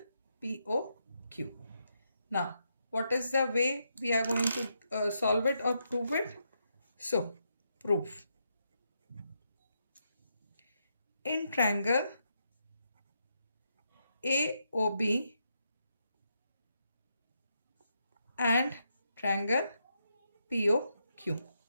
POQ. Now, what is the way we are going to solve it or prove it? So, proof. In triangle AOB and triangle POQ,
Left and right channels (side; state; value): both; inverted; correlation -0.81